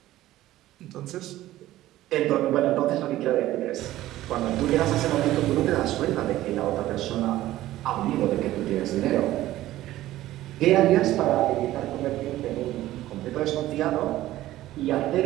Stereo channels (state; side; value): quieter; left; 15.1 dB